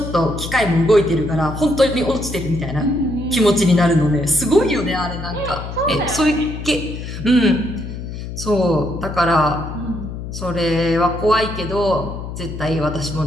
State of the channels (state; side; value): noise; left; hum, 8 dB below the sound